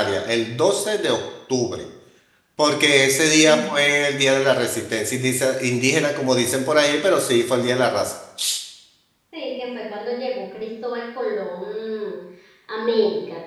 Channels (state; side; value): identical; both; correlation 1.00